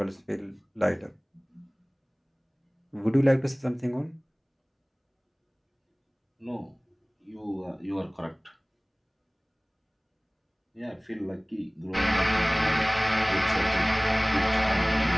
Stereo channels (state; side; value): identical; both; correlation 1.00